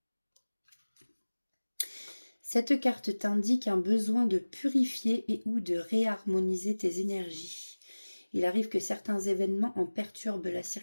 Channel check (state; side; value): inverted; both; correlation -1.00